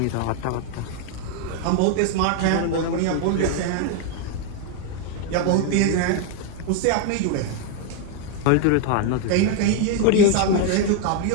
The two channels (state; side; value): different; both; correlation 0.01